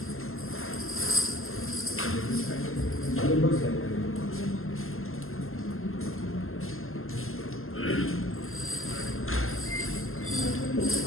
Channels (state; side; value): late; right; 0.61 ms